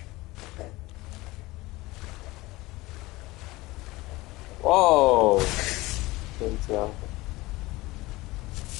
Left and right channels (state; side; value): quieter; right; 20.4 dB